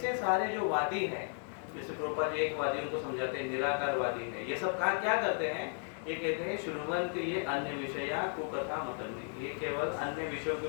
सारे जो वादी हैं, जैसे प्रभुपाद जी एक वादी उनको समझाते हैं निराकारवादी है, ये सब क्या करते हैं, ये कहते हैं शुण्वन्ति ये अन्य विषया कुकथा मतन्ति, ये केवल अन्य विषयों के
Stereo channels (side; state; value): right; silent; 55 dB below the other